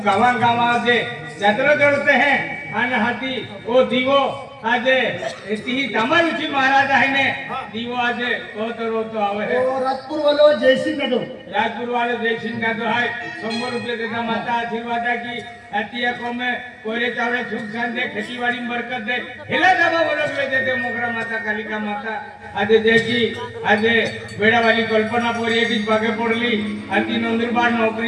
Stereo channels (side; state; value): both; identical; correlation 1.00